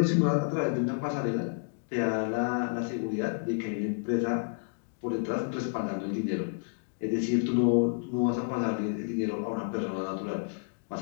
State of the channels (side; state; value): right; silent; digital silence